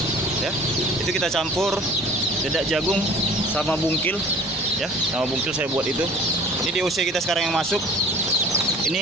ya. Itu kita campur dedak jagung sama bungkil ya, sama bungkil saya buat itu. Ini DOC kita sekarang yang masuk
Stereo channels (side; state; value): both; normal; correlation 0.47